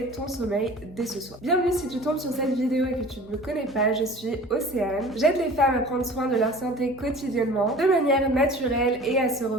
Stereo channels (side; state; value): both; normal; correlation 0.42